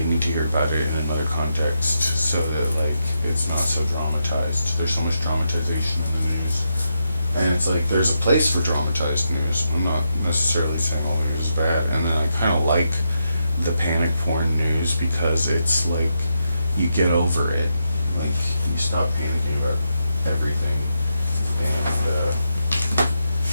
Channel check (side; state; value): both; inverted; correlation -0.84